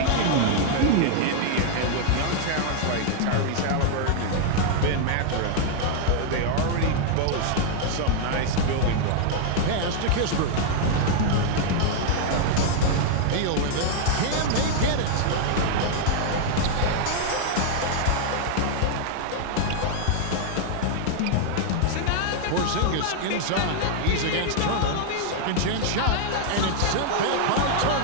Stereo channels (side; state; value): both; different; correlation -0.01